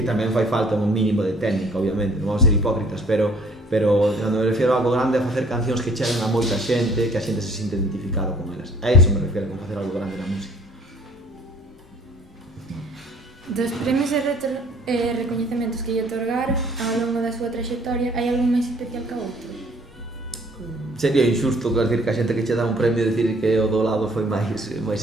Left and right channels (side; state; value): both; normal; correlation 0.57